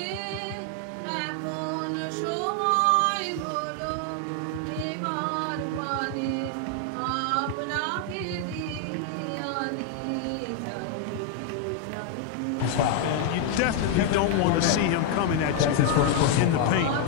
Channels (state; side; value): different; both; correlation 0.00